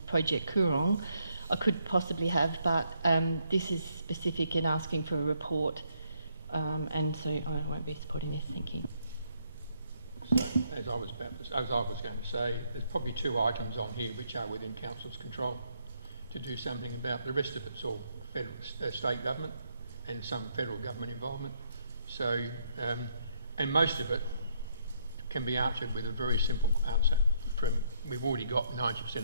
Project Coorong, I could possibly have, but this is specific in asking for a report, and so I won't be supporting this. Thank you. So, as I was going to say, there's probably 2 items on here which are within Council's control to do something about. The rest of it's all federal, state government and some federal government involvement. So, and most of it can be answered with a very simple answer. We've already got 90%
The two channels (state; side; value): inverted; both; correlation -0.72